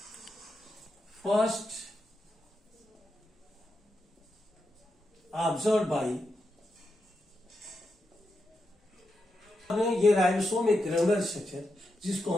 first observe by. ये राइबोसोम एक ग्रेनुलर स्ट्रक्चर, जिसको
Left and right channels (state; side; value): normal; both; correlation 0.86